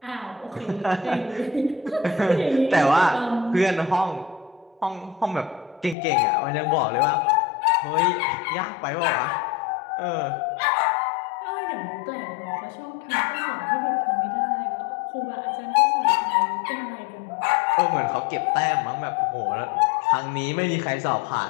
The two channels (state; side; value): drops out; right; at 6.0 s